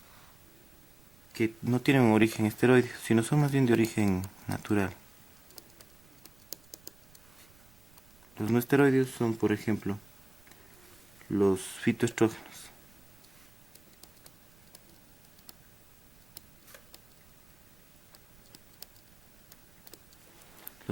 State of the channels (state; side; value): noise; right; rumble, 27 dB below the sound